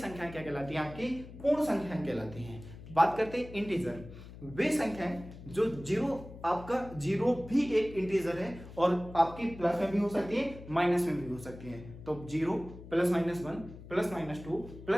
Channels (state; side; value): noise; left; hum, 15 dB below the sound